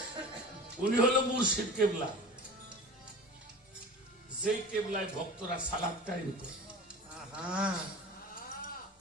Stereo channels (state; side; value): normal; both; correlation 0.37